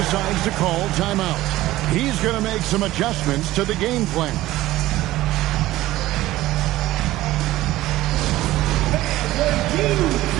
to call timeout. He's going to make some adjustments to the game plan. Welcome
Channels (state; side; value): quieter; left; 16.3 dB